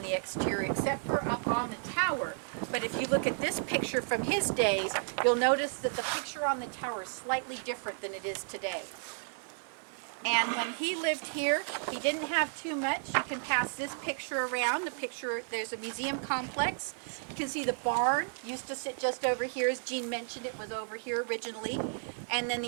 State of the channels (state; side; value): silent; left; digital silence